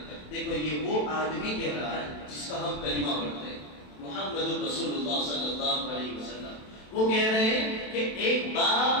دیکھو یہ وہ آدمی کہہ رہا ہے جس کا ہم کلمہ پڑھتے ہیں، محمد رسول اللہ صلی اللہ علیہ وسلم، وہ کہہ رہے ہیں کہ ایک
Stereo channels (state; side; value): late; right; 27 ms